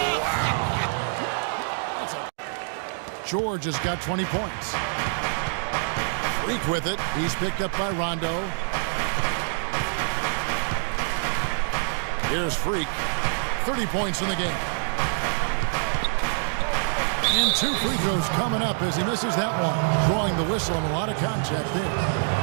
wow. George has got 20 points. Freak with it. He's picked up by Rondo. Here's Freak. 30 points in the game. And 2 free throws coming up as he misses that one. Drawing the whistle and a lot of contact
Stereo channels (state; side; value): silent; left; digital silence